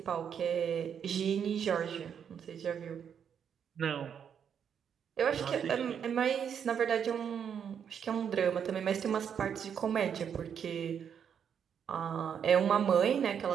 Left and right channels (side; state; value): left; quieter; 7.9 dB